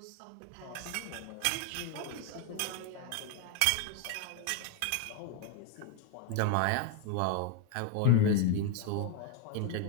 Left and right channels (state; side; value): different; both; correlation 0.01